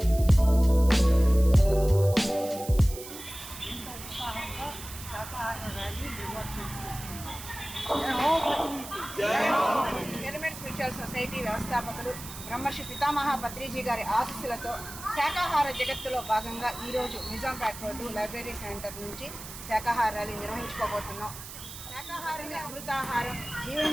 పిరమిడ్ స్పిరిచువల్ సొసైటీ వ్యవస్థాపకులు బ్రహ్మర్షి పితామహ పత్రిజీ గారి ఆశీస్సులతో శాకాహార జగత్తులో భాగంగా ఈరోజు నిజాంపేట రోడ్డు లైబ్రరీ సెంటర్ నుంచి శాకాహార ర్యాలీ నిర్వహించుకోబోతున్నాం. శాకాహారమే అమృతాహారం,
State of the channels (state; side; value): noise; right; hiss, 12 dB below the sound